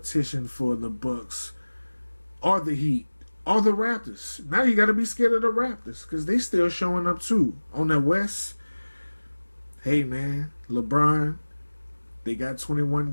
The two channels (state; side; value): inverted; both; correlation -1.00